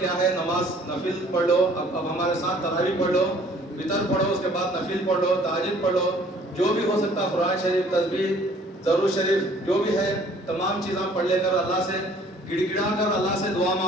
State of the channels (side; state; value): both; normal; correlation 0.56